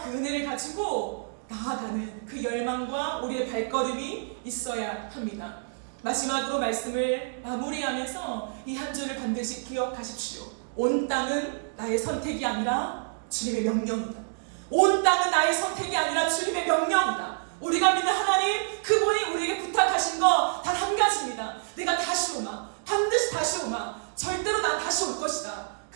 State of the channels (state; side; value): silent; left; digital silence